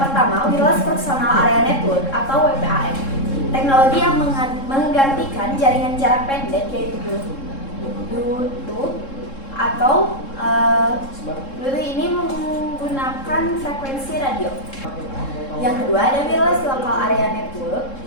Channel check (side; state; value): right; late; 3.7 ms